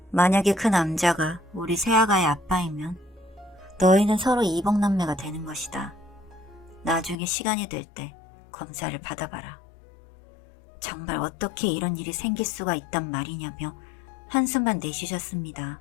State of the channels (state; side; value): drops out; right; at 7.2 s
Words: 만약에 그 남자가 우리 새아가의 아빠이면 너희는 서로 이복남매가 되는 것이다. 나중에 시간이 될 때 검사를 받아봐라. 정말 어떻게 이런 일이 생길 수가 있단 말이냐며 한숨만 내쉬셨습니다.